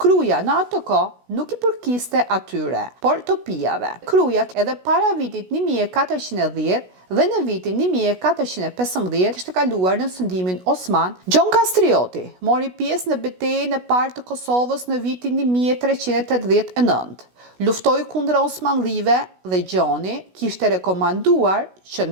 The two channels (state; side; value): late; left; 16 ms